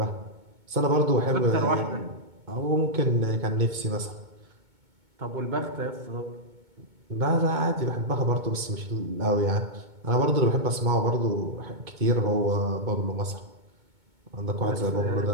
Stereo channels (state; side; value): late; left; 2.2 ms